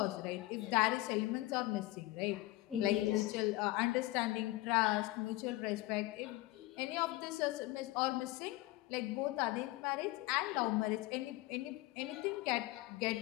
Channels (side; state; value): right; quieter; 19.0 dB